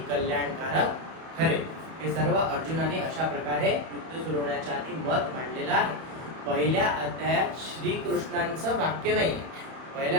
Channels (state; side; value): late; left; 31 ms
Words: कल्याणकारक ठरेल। हे सर्व अर्जुनाने अशा प्रकारे युद्ध सुरू होण्याच्या आधी मत मांडलेलं आहे। पहिल्या अध्यायात श्रीकृष्णांचं वाक्य नाही,